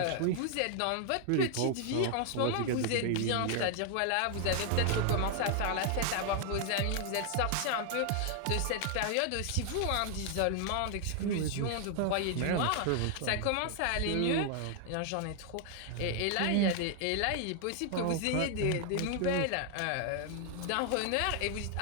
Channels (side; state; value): both; different; correlation 0.00